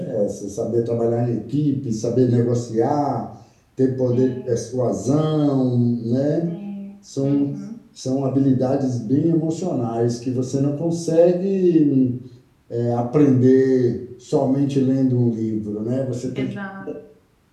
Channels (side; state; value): both; identical; correlation 1.00